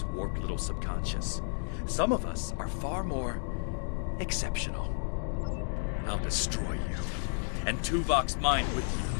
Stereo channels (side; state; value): right; silent; 56 dB below the other